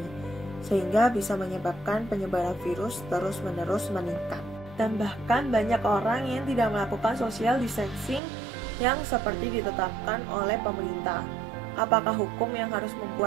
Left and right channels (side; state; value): left; drops out; at 8.2 s